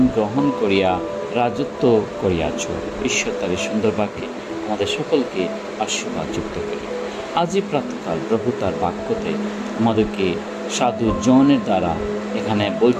গ্রহণ করিয়া রাজত্ব করিয়াছ। ঈশ্বর তার সুন্দর বাক্যে আমাদের সকলকে আশীর্বাদ যুক্ত করি। আজই প্রাতকাল প্রভু তার বাক্যতে আমাদেরকে সাধু জনের দ্বারা এখানে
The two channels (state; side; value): identical; both; correlation 1.00